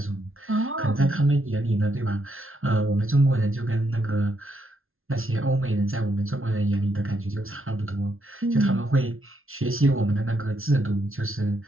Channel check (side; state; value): left; late; 0.61 ms